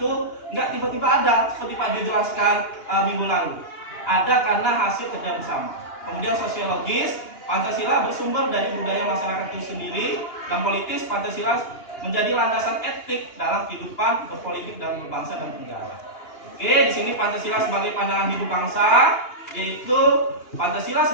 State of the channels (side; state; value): right; late; 2.9 ms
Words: nggak tiba-tiba ada seperti Pak Dio jelaskan minggu lalu. Ada karena hasil kerja bersama. Kemudian sosiologis, Pancasila bersumber dari budaya masyarakat itu sendiri, dan politis, Pancasila menjadi landasan etik dalam kehidupan berpolitik dan berbangsa dan bernegara. Oke, di sini Pancasila sebagai pandangan hidup bangsa, yaitu Pancasila